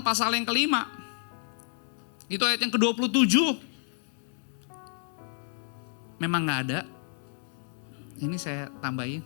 yang ke-5, itu ayat yang ke-27. Memang gak ada. Ini saya tambahin.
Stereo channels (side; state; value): right; silent; 58 dB below the other